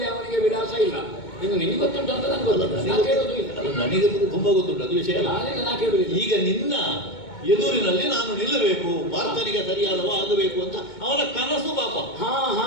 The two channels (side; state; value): right; late; 2.2 ms